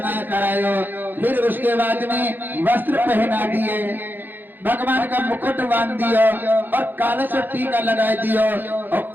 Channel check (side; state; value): left; late; 0.091 ms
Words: करायो, फिर उसके बाद में वस्त्र पहना दिए, भगवान का मुकुट बांध दियो, और काला सा टीका लगा दियो,